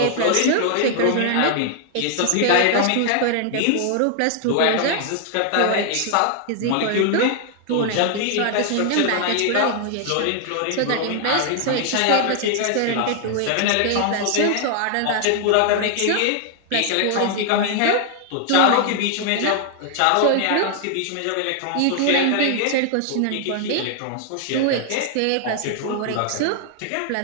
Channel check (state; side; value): different; both; correlation 0.00